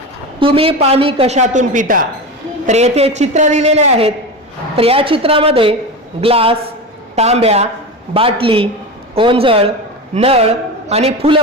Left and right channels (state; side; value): normal; both; correlation 0.23